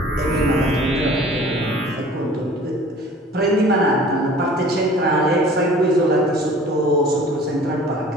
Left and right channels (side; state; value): both; normal; correlation 0.48